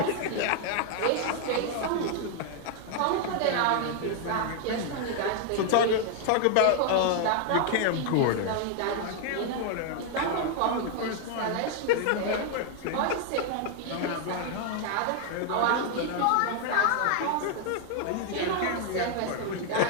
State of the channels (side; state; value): both; different; correlation 0.00